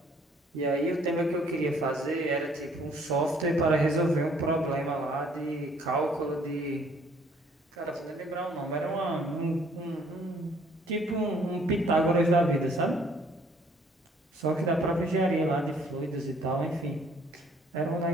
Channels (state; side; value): normal; both; correlation 0.61